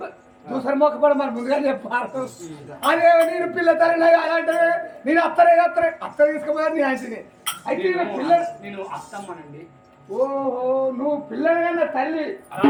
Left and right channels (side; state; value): both; identical; correlation 1.00